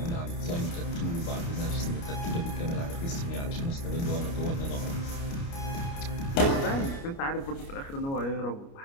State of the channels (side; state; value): right; late; 29 ms